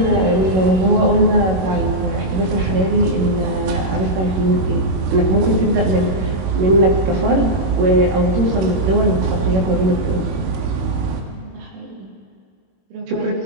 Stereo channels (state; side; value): late; left; 21 ms